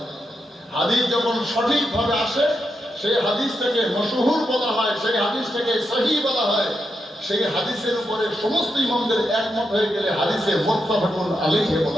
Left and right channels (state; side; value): normal; both; correlation 0.84